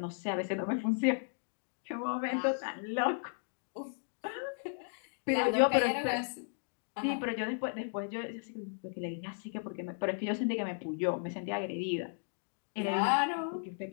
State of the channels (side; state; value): right; silent; digital silence